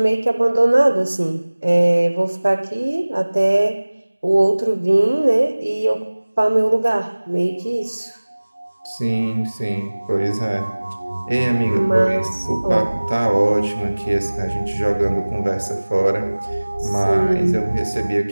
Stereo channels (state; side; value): inverted; both; correlation -1.00